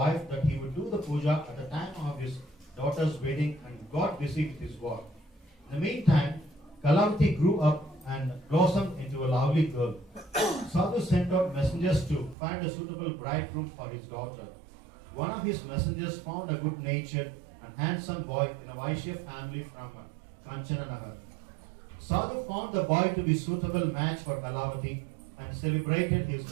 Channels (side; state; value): left; drops out; at 12.4 s